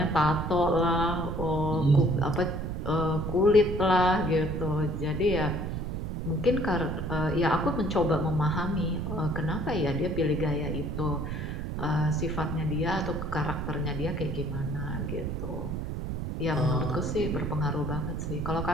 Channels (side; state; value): right; noise; rumble, 4 dB below the sound